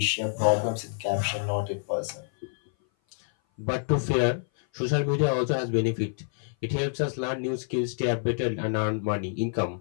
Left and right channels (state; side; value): silent; right; 57 dB below the other